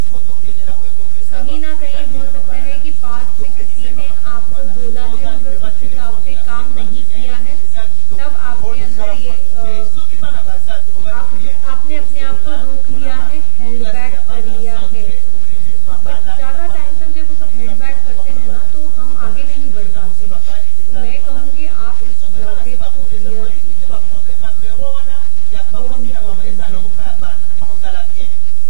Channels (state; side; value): different; both; correlation 0.00